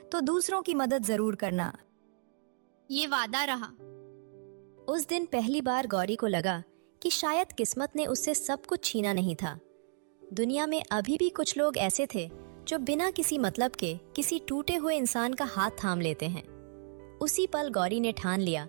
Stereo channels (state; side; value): silent; left; digital silence